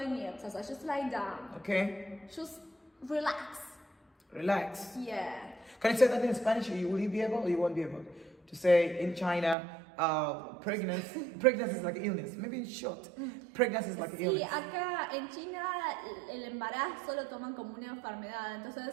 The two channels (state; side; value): drops out; left; at 9.6 s